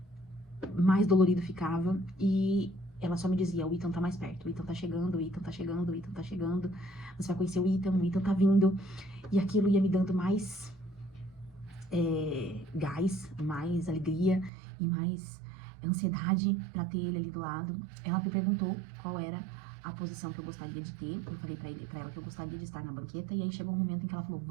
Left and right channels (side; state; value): left; drops out; at 14.5 s